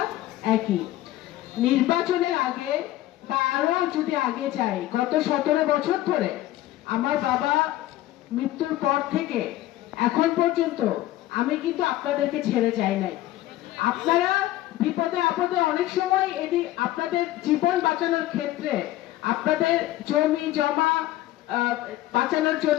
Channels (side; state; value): right; quieter; 15.2 dB